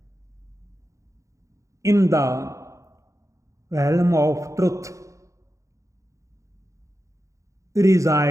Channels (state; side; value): late; left; 0.15 ms